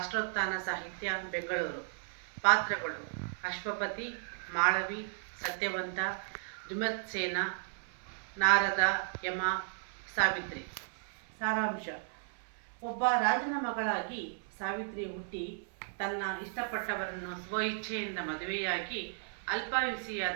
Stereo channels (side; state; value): left; silent; 55 dB below the other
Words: ಸಾಹಿತ್ಯ, ಬೆಂಗಳೂರು. ಪಾತ್ರಗಳು: ಅಶ್ವಪತಿ, ಮಾಳವಿ, ಸತ್ಯವಂತ, ದ್ಯುಮತ್ಸೇನ, ನಾರದ, ಯಮ, ಸಾವಿತ್ರಿ. ಸಾರಾಂಶ: ಒಬ್ಬ ರಾಜನ ಮಗಳಾಗಿ ಸಾವಿತ್ರಿ ಹುಟ್ಟಿ ತನ್ನ ಇಷ್ಟಪಟ್ಟವರನ್ನು ಸ್ವಇಚ್ಛೆಯಿಂದ ಮದುವೆಯಾಗಿ